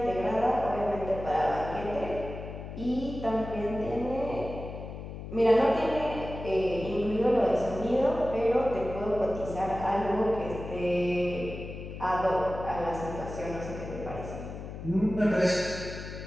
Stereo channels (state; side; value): noise; left; hum, 10 dB below the sound